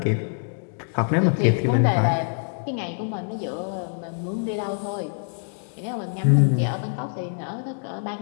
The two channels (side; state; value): right; silent; digital silence